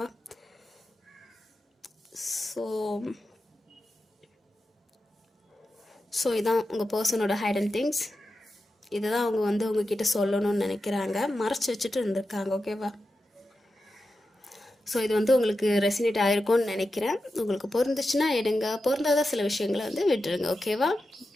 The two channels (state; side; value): normal; both; correlation 0.91